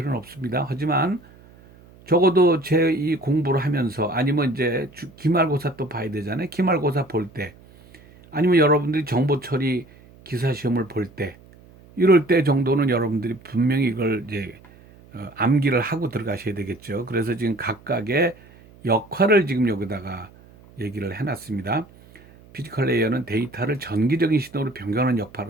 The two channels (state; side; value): noise; right; hum, 25 dB below the sound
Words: 없습니다. 하지만 적어도 제 이 공부를 하면서 아니면 이제 기말고사 또 봐야 되잖아요. 기말고사 볼 때 아니면 여러분들이 정보 처리 기사 시험을 볼 때 이럴 때 정도는 여러분들이 분명히 이걸 이제 암기를 하고 들어가셔야 되겠죠. 그래서 지금 각각의 역할을 지금 여기다가 얘기를 해놨습니다. 피지컬 레이어는 데이터를 전기적인 신호로 변경하는